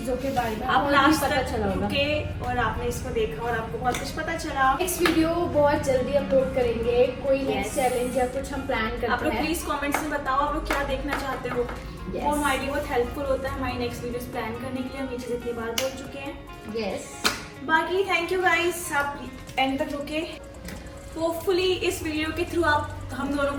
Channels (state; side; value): identical; both; correlation 1.00